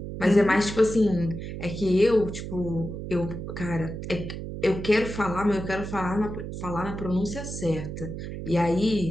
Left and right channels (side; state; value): right; noise; hum, 7 dB below the sound